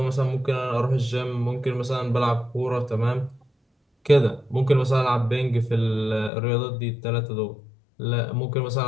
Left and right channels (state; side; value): drops out; right; at 6.3 s